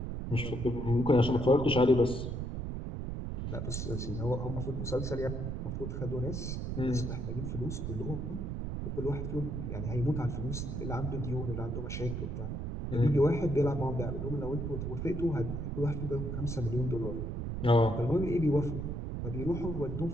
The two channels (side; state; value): right; noise; rumble, 4 dB below the sound